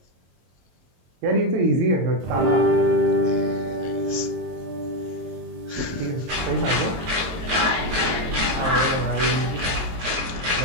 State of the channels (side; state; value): left; late; 23 ms